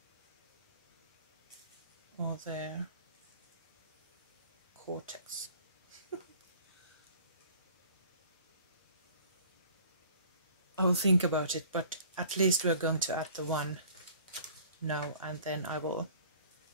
Or there. Cortex. I will think about it, but at least we're going to add the one now, and then I will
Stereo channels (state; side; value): inverted; both; correlation -0.51